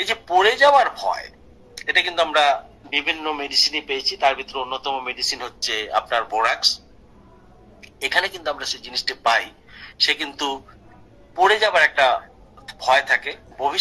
যে পড়ে যাওয়ার ভয়, এটা কিন্তু আমরা বিভিন্ন মেডিসিনে পেয়েছি, তার ভিতরে অন্যতম মেডিসিন হচ্ছে আপনার বোরাক্স। এখানে কিন্তু আমরা সেই জিনিসটা পাই, সে কিন্তু পড়ে যাবার একটা ভয় থাকে,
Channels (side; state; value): both; identical; correlation 1.00